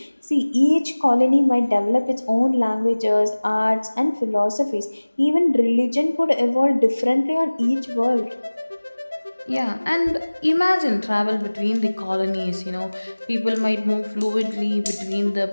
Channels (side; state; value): both; inverted; correlation -1.00